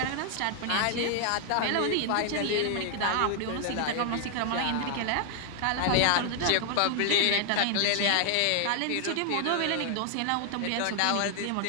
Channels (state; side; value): different; both; correlation 0.00